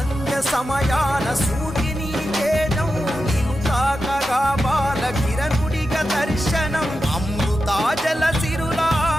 సమయాన సూర్యుని తేజం తాకగా బాల కిరణుడిగా దర్శనం అమృతాజల సిరులా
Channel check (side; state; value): both; normal; correlation 0.90